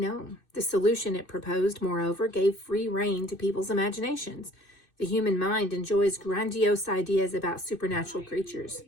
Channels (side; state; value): right; late; 2.6 ms